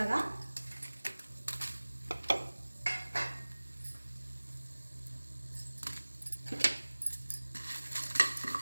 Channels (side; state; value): both; inverted; correlation -1.00